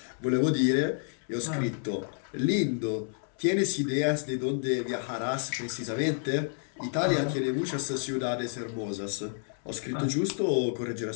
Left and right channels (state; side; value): silent; right; 58 dB below the other